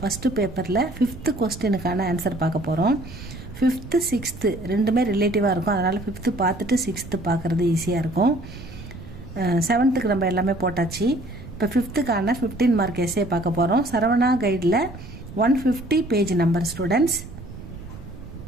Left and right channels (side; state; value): right; noise; rumble, 14 dB below the sound